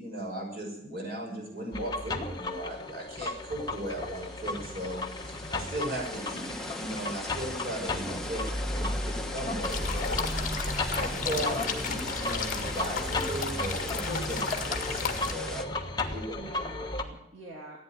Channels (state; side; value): normal; both; correlation 0.28